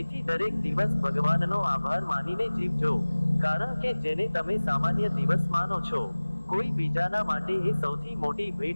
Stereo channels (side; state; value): both; inverted; correlation -1.00